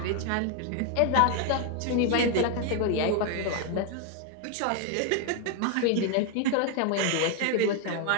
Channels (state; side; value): different; both; correlation 0.01